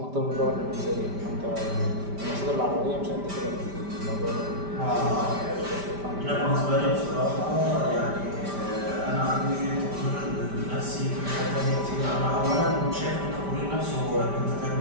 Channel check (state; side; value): late; left; 5.1 ms